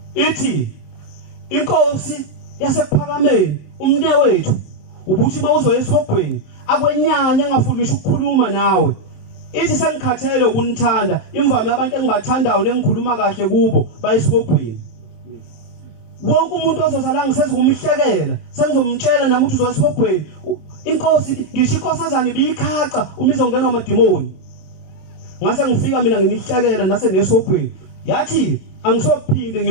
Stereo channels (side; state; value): right; late; 27 ms